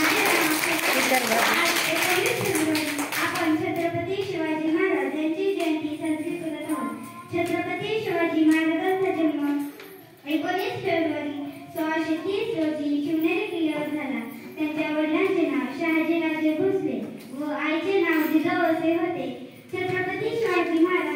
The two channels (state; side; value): identical; both; correlation 1.00